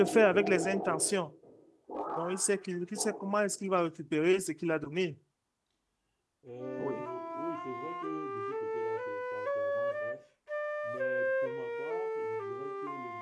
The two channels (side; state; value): both; identical; correlation 1.00